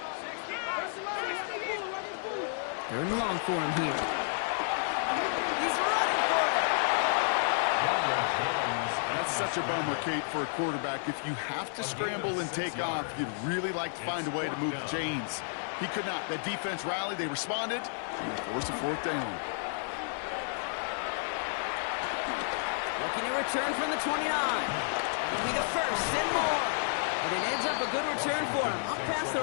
3rd and long for him here. He's running for it. That's such a bummer, Kate, for a quarterback. If you have to scramble and take off, you'd really like to find a way to move the chains. He could not. That defense rallied. They responded, and they forced a 4th down. Looking to return from the 29. It'll be the 1st and more. And it ends up a good return for him. Up past their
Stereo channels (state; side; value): silent; right; 57 dB below the other